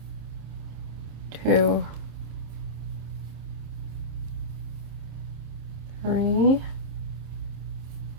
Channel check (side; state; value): left; late; 26 ms